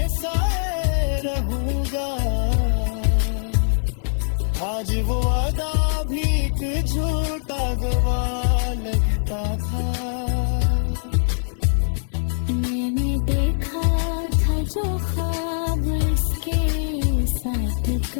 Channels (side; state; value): right; silent; digital silence